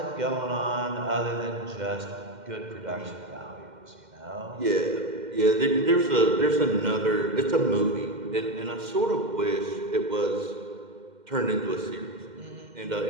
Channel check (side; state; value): left; late; 2.1 ms